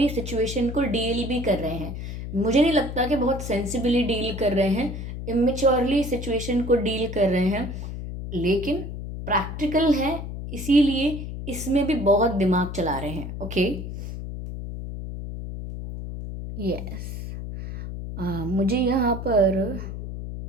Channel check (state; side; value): noise; left; hum, 7 dB below the sound